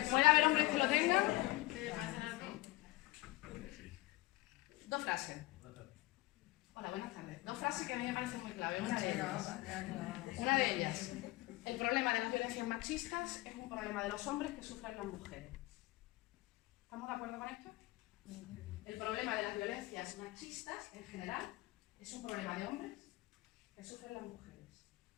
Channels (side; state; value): right; quieter; 20.1 dB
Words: ¿Puede haber hombres que lo tengan? Dos frases. Hola, buenas tardes. Dos frases que a mí me parecen muy clave. Una de ellas. El problema de las violencias machistas es un problema de los hombres que sufren las mujeres. ¿Estamos de acuerdo con esto? El problema de las violencias machistas, en general, es un problema de hombres que sufren las mujeres.